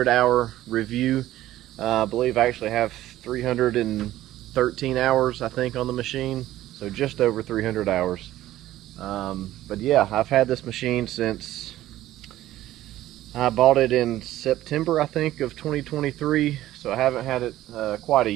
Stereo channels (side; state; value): left; quieter; 14.4 dB